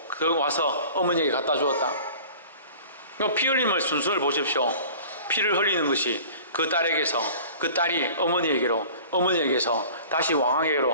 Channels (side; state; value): both; inverted; correlation -0.44